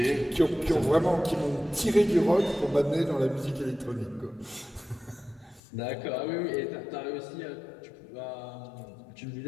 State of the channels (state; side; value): drops out; right; at 5.6 s